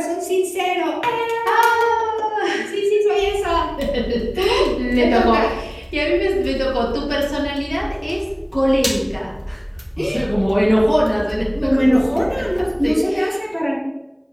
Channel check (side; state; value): both; identical; correlation 1.00